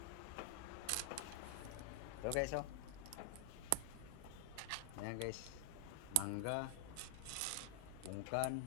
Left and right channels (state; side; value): different; both; correlation 0.00